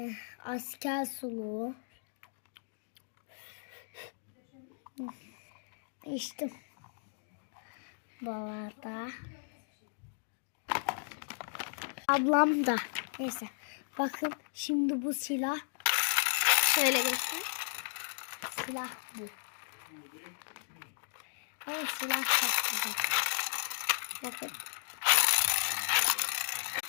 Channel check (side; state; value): right; silent; digital silence